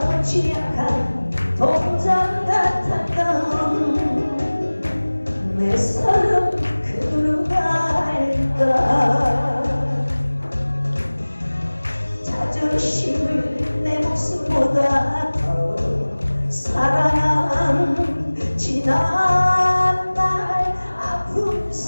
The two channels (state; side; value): inverted; both; correlation -1.00